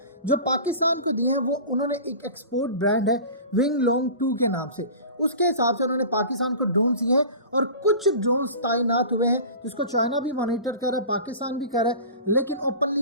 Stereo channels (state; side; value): inverted; both; correlation -0.37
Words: جو پاکستان کو دیے ہیں وہ انہوں نے ایک ایکسپورٹ برانڈ ہے ونگ لانگ 2 کے نام سے, اس کے حساب سے انہوں نے پاکستان کو ڈرونز دیے ہیں, اور کچھ ڈرونز تعینات ہوئے ہیں جس کو چائنا بھی مانیٹر کر رہا ہے, پاکستان بھی کر رہا ہے, لیکن